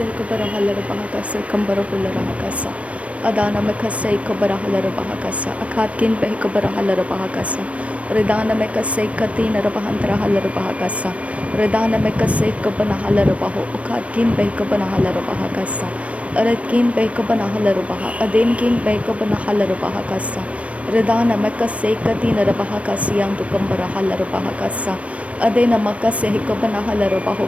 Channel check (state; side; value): late; left; 0.064 ms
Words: Kabarahala Bahakasa Kambarahulla Rahakasa Adana Mekase Kabarahala Bahakasa Akatkin Behikabarahala Bahakasa Redana Mekase Katina Rabahantra Hala Bahakasa Redana Mekase Kabanahala Baho Ukatkin Behikabanahala Bahakasa Aratkin Behikabanahala Baha Adinkin Behikabanahala Bahakasa Redana Mekase Katina Rabahakasian to Kambarahala Bahakasa Adena Makase Hikabanahala